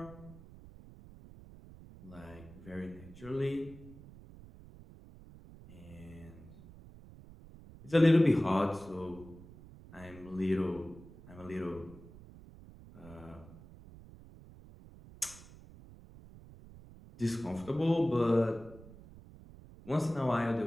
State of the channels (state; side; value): noise; right; rumble, 19 dB below the sound